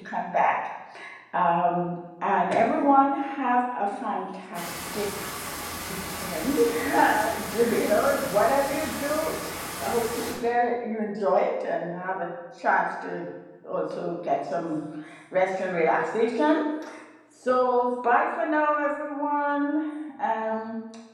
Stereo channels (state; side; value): identical; both; correlation 1.00